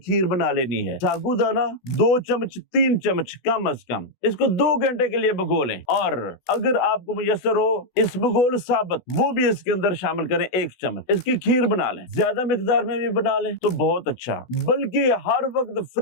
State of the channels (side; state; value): right; late; 16 ms